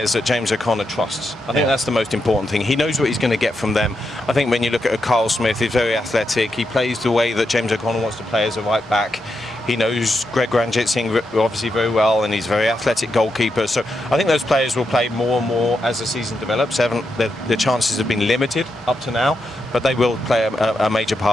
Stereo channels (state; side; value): normal; both; correlation 0.84